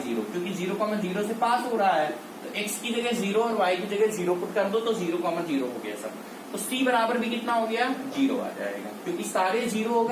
0, क्योंकि 0,0 से पास हो रहा है, तो x की जगह 0 और y की जगह 0 पुट कर दो तो 0,0 हो गया सब। तो c बराबर भी कितना हो गया, 0 आ जाएगा, क्योंकि सारे 0 हो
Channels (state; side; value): identical; both; correlation 1.00